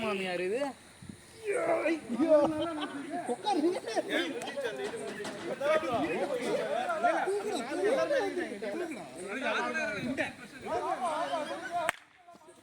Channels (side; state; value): both; identical; correlation 1.00